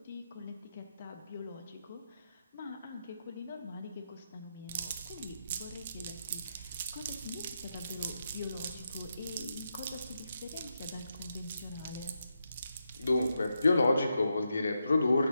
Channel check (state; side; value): inverted; both; correlation -0.84